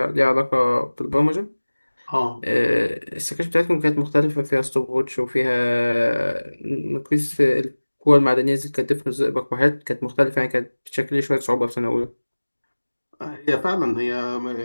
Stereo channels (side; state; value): both; inverted; correlation -1.00